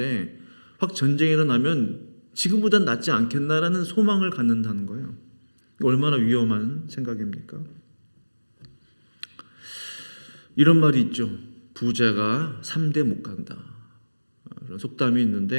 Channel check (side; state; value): both; inverted; correlation -1.00